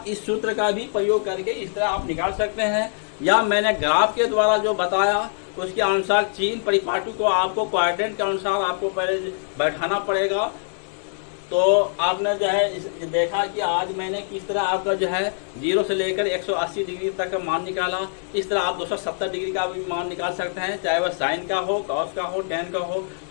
इस सूत्र का भी प्रयोग करके इस तरह आप निकाल सकते हैं। या मैंने ग्राफ के द्वारा जो बताया उसके अनुसार चीन परिपाटी को आपको क्वाड्रेंट के अनुसार आपको पहले बैठाना पड़ेगा। तो आपने जो है देखा कि आज मैंने किस तरह आपका जो है 0 से लेकर 180 डिग्री तक का मान निकाला। इस तरह आप 270 डिग्री का भी मान निकाल सकते हैं, चाहे वह साइन का हो, कॉस का हो, टेन का हो।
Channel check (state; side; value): silent; right; digital silence